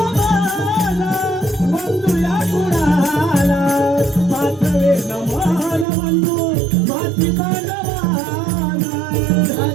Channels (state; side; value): drops out; left; at 5.9 s